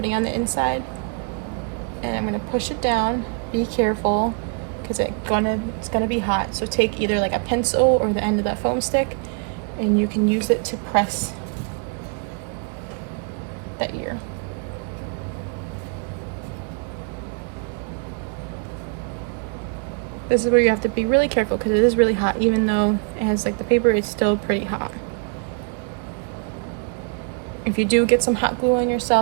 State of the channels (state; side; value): quieter; left; 39.0 dB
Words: it on the inside, and I'm going to push it down. Be careful, because it's gonna be hot. So take either like a pencil or the end of that foam stick, and you can use it to press the ear. This is where you have to be really careful, because it is really hot. Even though it has like the paper, it's still pretty hot. If you do get some hot glue on